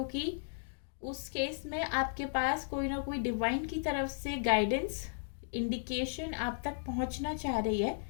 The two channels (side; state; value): right; silent; digital silence